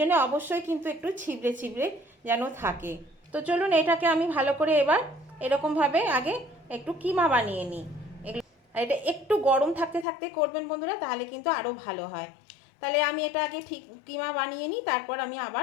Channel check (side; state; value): right; drops out; at 10.1 s